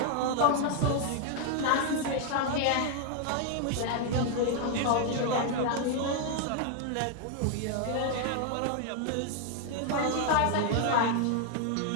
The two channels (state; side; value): different; both; correlation 0.00